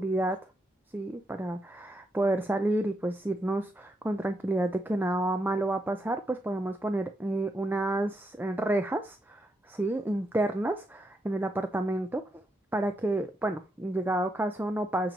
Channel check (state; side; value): normal; both; correlation 0.81